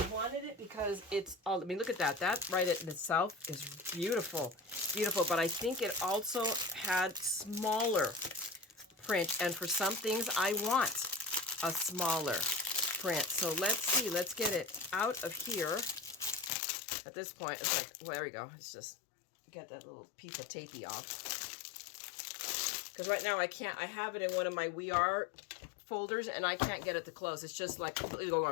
wanted it because it's all, I mean, look at that. That right in itself is beautiful. Beautiful. But I think it also had smaller print. And for some things, I want a smaller print. So let's see. Let's get it out of here. At this point, it's like, well, there we go. It's just, get that little piece of tapey off. Because right now I can't, I have it in one of my We Are folders and I can't get it to close. It's just like completely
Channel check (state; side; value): drops out; right; at 16.5 s